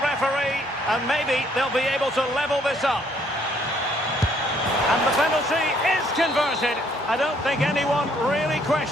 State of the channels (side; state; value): both; normal; correlation 0.66